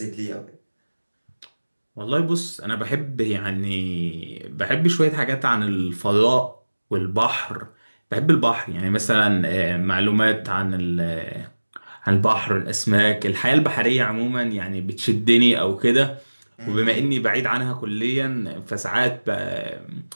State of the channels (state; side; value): inverted; both; correlation -1.00